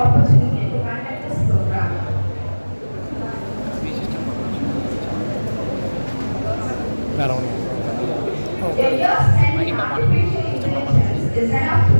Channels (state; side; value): inverted; both; correlation -1.00